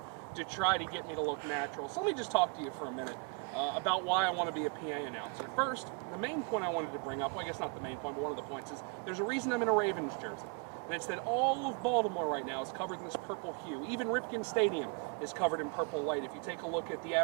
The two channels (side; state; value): left; quieter; 35.0 dB